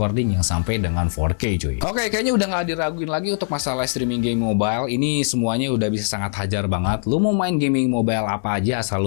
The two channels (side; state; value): right; silent; digital silence